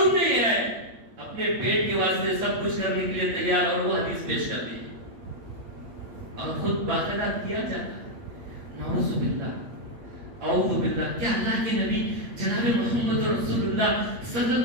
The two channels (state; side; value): late; left; 8.5 ms